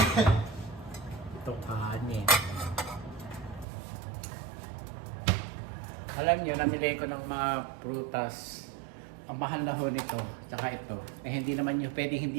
itong kanin. Alam nyo, namili ko ng mga prutas. Ang mahal na ho nito, tsaka ito. Eh hindi naman nyo pwedeng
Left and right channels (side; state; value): left; drops out; at 3.7 s